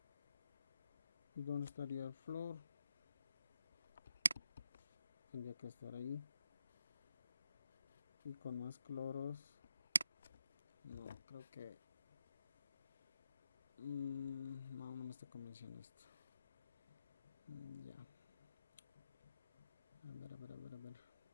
¿Y dónde estaría el flúor? Tendría que estar ahí. Y con más cloros. No, creo que no me está convenciendo esto. Ya. A ver.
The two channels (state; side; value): inverted; both; correlation -0.85